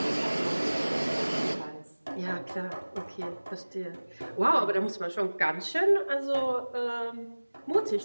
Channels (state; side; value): inverted; both; correlation -1.00